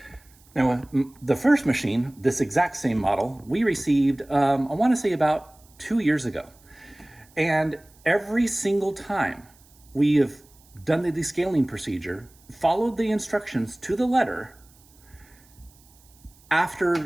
Now, the first machine, this exact same model, we received, I want to say about 2 years ago. And every single time we have done the descaling procedure, followed the instructions to the letter,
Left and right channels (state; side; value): noise; right; hiss, 29 dB below the sound